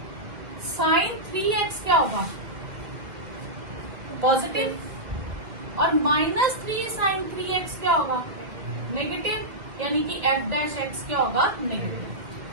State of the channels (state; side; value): late; left; 2.1 ms